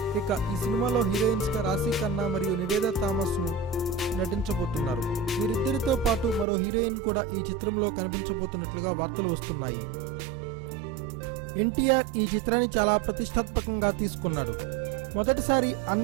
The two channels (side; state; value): left; drops out; at 6.5 s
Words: ఇక ఈ సినిమాలో హీరోయిన్స్ గా రాశి ఖన్నా మరియు నివేదా థామస్ ను నటించబోతున్నారు. వీరిద్దరితో పాటు మరో హీరోయిన్ కూడా ఈ చిత్రంలో కనిపించబోతున్నట్లుగా వార్తలు వస్తున్నాయి. ఎన్టీఆర్ ఈ చిత్రాన్ని చాలా ప్రతిష్టాత్మకంగా తీసుకున్నాడు. మొదటిసారి